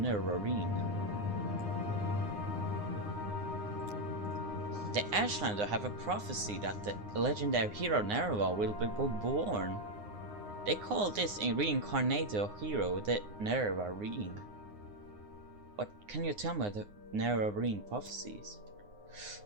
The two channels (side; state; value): left; late; 9.7 ms